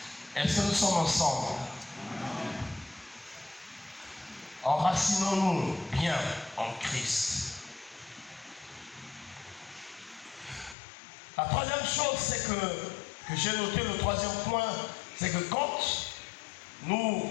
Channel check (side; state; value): right; drops out; at 10.8 s